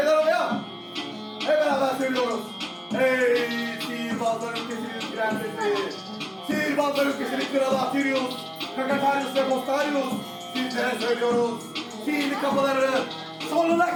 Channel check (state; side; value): identical; both; correlation 1.00